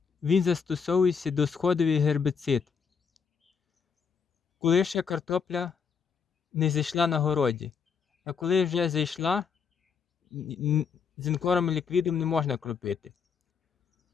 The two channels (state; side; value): quieter; right; 6.1 dB